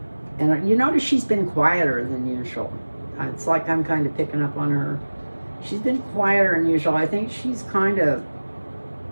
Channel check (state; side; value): inverted; both; correlation -1.00